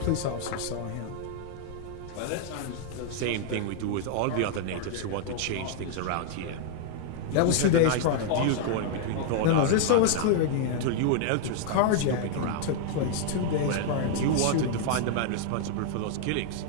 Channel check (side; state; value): both; different; correlation -0.01